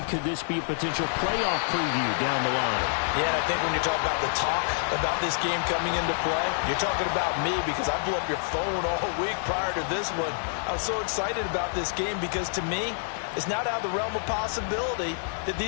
Could this be a potential playoff preview down the line? Yeah, and I think when you talk about the talk about this game coming into play, you're talking about me because I blew up your phone all week prior to this one. I was so excited about this game because to me, it's not out of the realm of possibility that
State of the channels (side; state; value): right; silent; 60 dB below the other